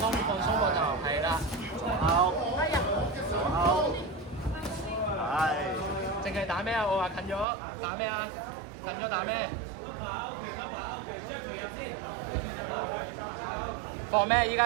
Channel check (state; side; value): drops out; left; at 7.5 s